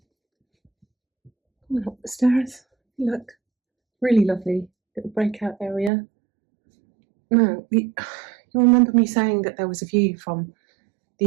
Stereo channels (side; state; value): left; drops out; at 5.9 s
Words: Up the stairs, look, really lovely little breakout area. Now, you'll remember me saying that there was a view from